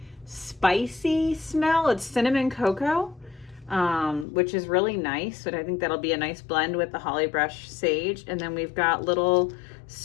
spicy smell. It's cinnamon cocoa, which is really nice. But I think that'll be a nice blend with the holly brush sage. And then we've got little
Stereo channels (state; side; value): drops out; right; at 4.2 s